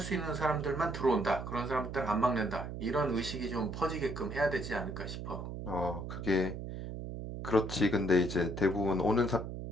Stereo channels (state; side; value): noise; right; hum, 7 dB below the sound